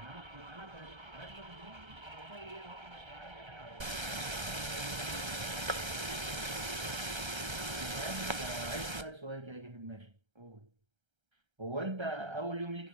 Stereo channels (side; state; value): left; late; 1.3 ms